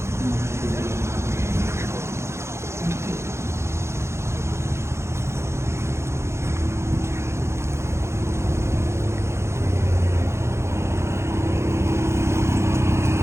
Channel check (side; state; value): left; late; 0.13 ms